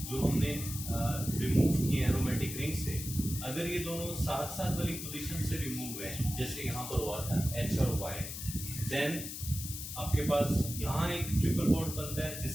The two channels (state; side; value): noise; left; hiss, 7 dB below the sound